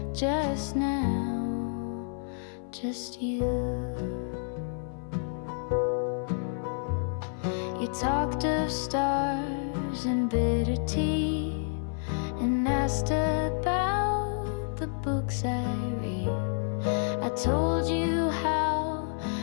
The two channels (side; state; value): right; silent; 57 dB below the other